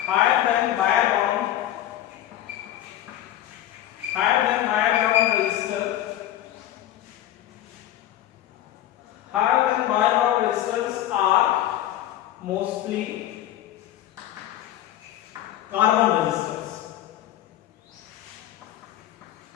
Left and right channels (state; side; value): quieter; right; 12.7 dB